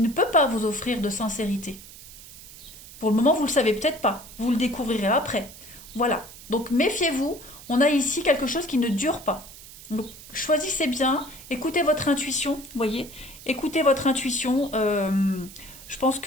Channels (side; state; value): right; noise; hiss, 17 dB below the sound